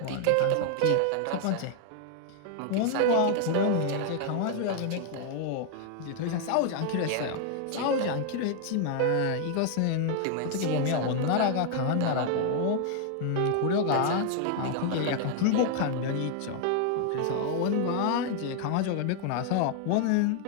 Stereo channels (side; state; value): both; different; correlation 0.00